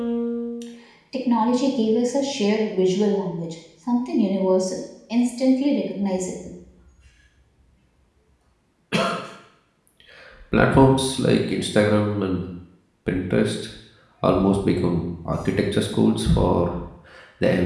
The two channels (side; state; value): both; identical; correlation 1.00